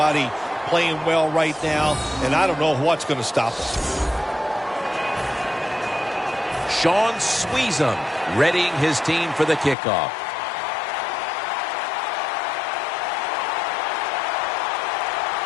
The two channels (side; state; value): right; drops out; at 9.8 s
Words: playing well right now, and I don't know what's going to stop them. Sean Sweezum readying his team for the kickoff.